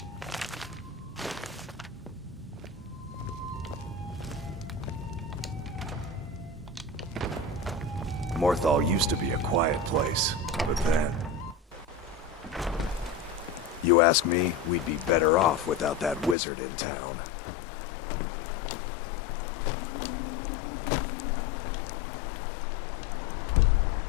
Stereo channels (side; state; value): right; drops out; at 16.4 s